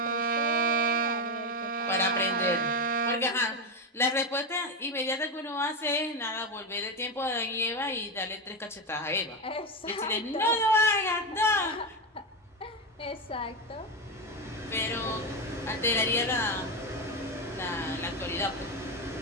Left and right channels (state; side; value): normal; both; correlation 0.13